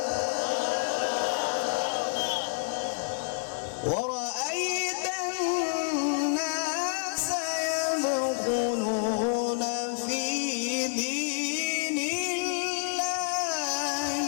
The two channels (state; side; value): silent; right; 59 dB below the other